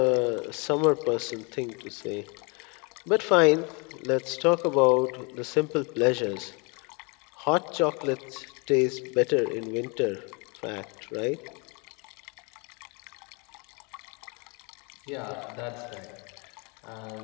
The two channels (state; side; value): quieter; right; 31.8 dB